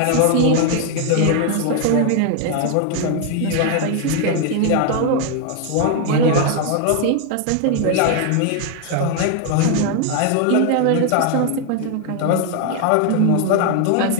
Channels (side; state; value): both; different; correlation 0.00